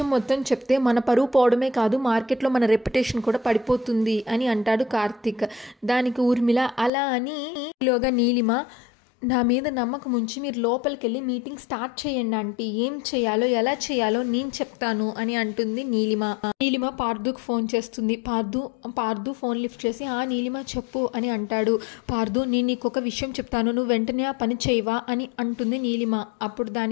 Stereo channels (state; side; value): drops out; right; at 6.9 s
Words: మొత్తం చెప్తే మన పరువు పోవడమే కాదు మార్కెట్లో మన రెప్యుటేషన్ కూడా పడిపోతుంది అని అంటాడు కార్తిక్. దానికి ఊర్మిళ, అలా అని ఈలోగా నీలిమ, నా మీద నమ్మకం ఉంచి మీరు లోపలికి వెళ్ళి మీటింగ్ స్టార్ట్ చేయండి ఆంటీ, ఏం చేయాలో ఎలా చేయాలో నేను చెప్తాను అని అంటుంది నీలిమ. నీలిమ పార్దుకు ఫోన్ చేస్తుంది. పార్దు ఫోన్ లిఫ్ట్ చేసి, ఆ నీలిమ చెప్పు అని అంటాడు. పార్దు, నేను నీకు ఒక విషయం చెప్తాను, నువ్వు వెంటనే ఆ పని చేయవా అని అంటుంది నీలిమ. అప్పుడు